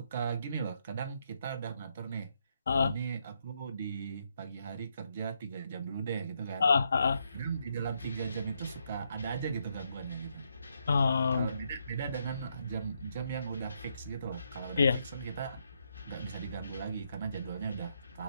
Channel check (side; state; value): both; inverted; correlation -0.77